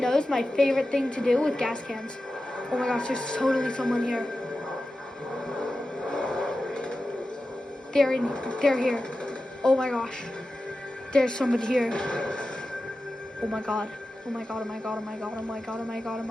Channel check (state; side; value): normal; both; correlation 0.93